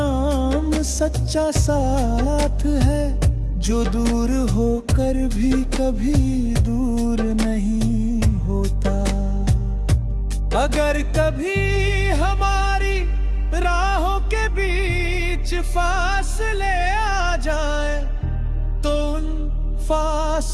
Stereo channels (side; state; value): both; identical; correlation 1.00